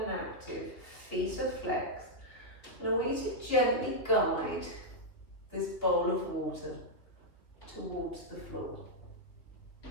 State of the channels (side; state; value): right; late; 3.1 ms